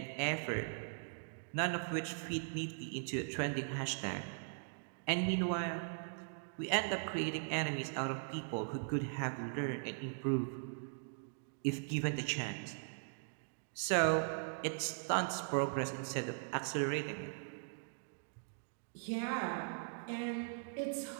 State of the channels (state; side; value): silent; left; digital silence